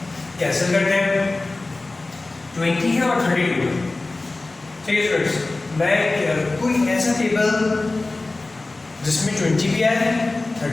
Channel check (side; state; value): right; quieter; 3.2 dB